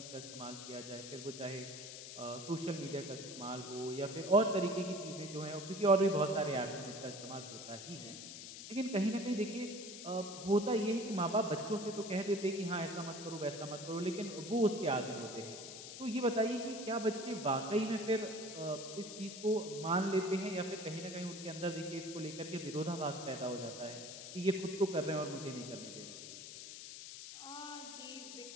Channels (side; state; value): left; noise; hiss, 10 dB below the sound